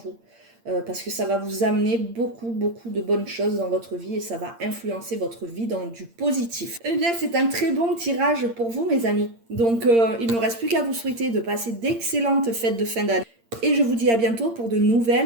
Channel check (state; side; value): late; left; 8.7 ms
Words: Parce que ça va vous amener beaucoup de bonnes choses dans votre vie et ça va influencer votre vie dans du positif. Eh bien, c'est un très bon tirage pour vous, mes amis. Donc, il ne me reste plus qu'à vous souhaiter de passer d'excellentes fêtes de fin d'année. Et je vous dis à bientôt pour de